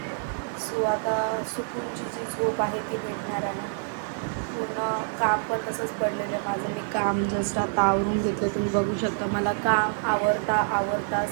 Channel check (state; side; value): silent; left; digital silence